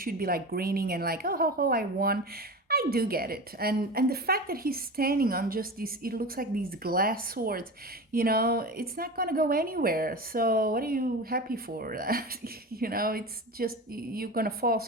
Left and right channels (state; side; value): normal; both; correlation 0.29